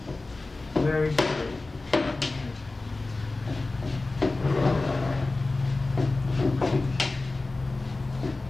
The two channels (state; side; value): quieter; right; 3.3 dB